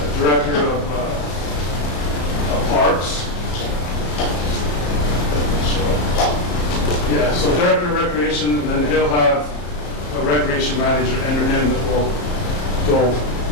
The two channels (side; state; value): right; late; 34 ms